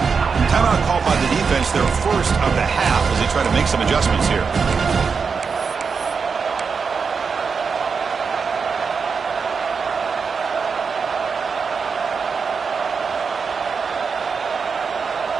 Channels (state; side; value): quieter; left; 5.5 dB